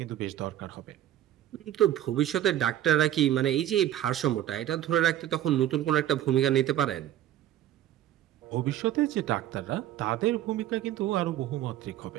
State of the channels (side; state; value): left; quieter; 12.3 dB